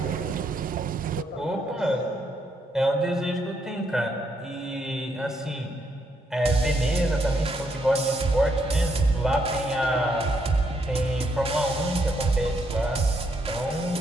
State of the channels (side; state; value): both; normal; correlation 0.75